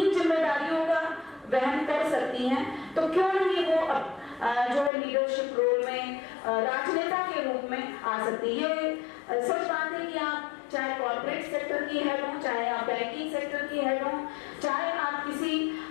जिम्मेदारियों का वहन कर सकती हैं तो क्यों नहीं वो जो है लीडरशिप रोल में राजनेता के रूप में आ सकती है। सच बात है कि आप चाहे कॉर्पोरेट सेक्टर की हेड हो, चाहे आप बैंकिंग सेक्टर की हेड हो, चाहे आप किसी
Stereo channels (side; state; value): right; drops out; at 4.9 s